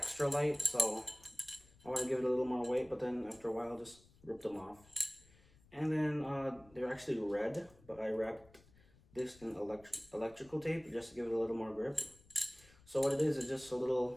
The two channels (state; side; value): noise; left; rumble, 27 dB below the sound